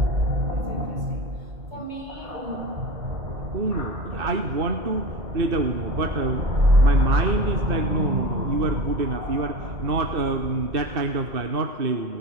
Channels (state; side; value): late; left; 2.6 ms